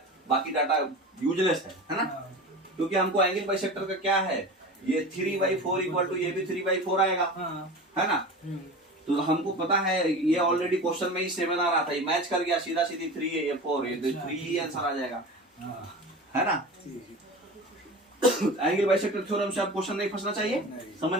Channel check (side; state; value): both; normal; correlation 0.32